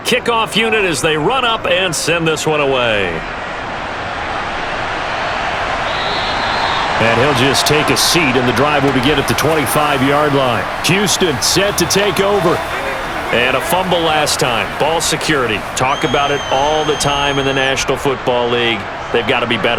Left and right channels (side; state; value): both; identical; correlation 1.00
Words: unit as they run up and send this one away. And he'll just take a seat, and the drive will begin at the 25-yard line. Houston set to take over. And a fumble last time. Ball security. Talk about it all the time in the National Football League. They've got to be